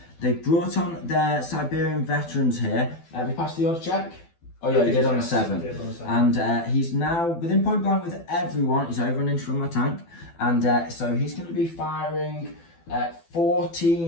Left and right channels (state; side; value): late; right; 12 ms